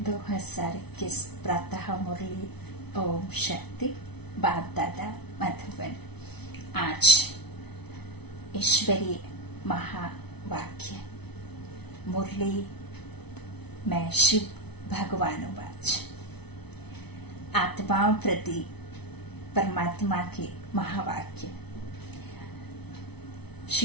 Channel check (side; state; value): right; late; 0.99 ms